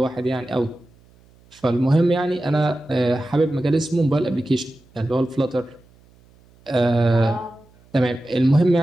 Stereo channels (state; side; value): noise; right; hum, 30 dB below the sound